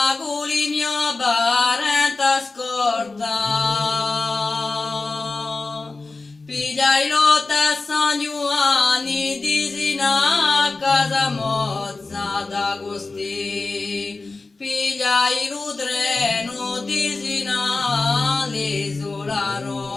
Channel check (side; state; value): right; quieter; 3.6 dB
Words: il mio parente scorta, pigliai lotta a San Giovanni di Sina a casa mozza d'Agosti, pigliai il treno di Sina all'isola